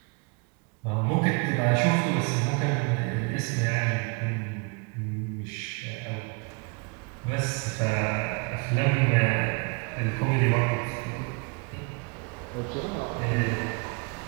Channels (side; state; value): left; quieter; 30.9 dB